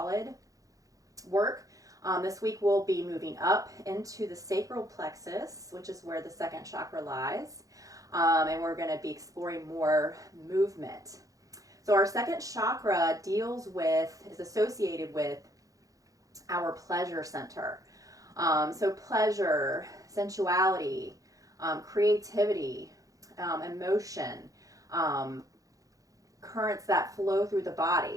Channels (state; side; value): late; left; 0.17 ms